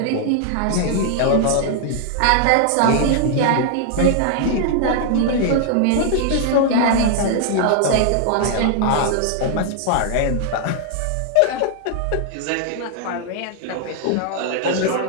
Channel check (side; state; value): both; different; correlation 0.00